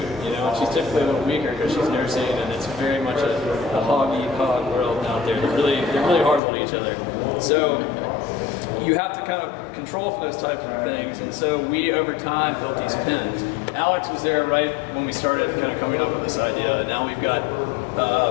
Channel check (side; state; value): right; drops out; at 6.4 s